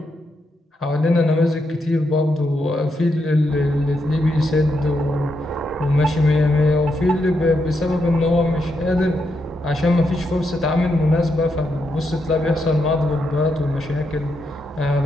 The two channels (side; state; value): both; normal; correlation 0.82